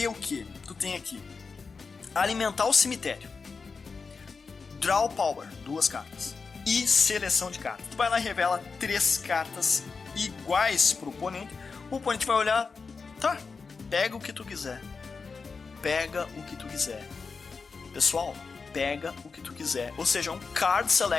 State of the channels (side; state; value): right; quieter; 4.8 dB